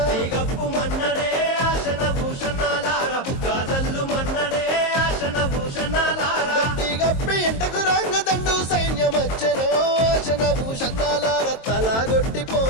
గప్పు మన్నడే ఆశన భూషణాలార బుక్క జల్లు మన్నడే ఆశన భూషణాలార గప్పిగప్పి ఇంటకు రంగదండు సైన్యమచ్చనో ఆశన భూషణాలార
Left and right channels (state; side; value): late; right; 22 ms